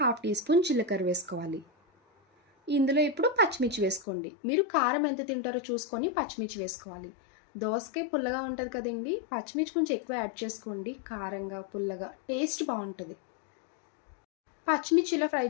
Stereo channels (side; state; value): right; drops out; at 4.0 s